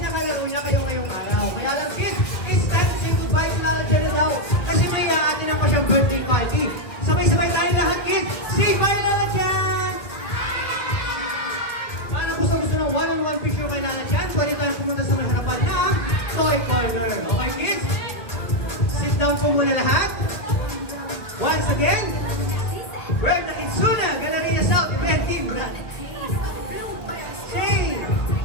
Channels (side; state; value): right; late; 1.8 ms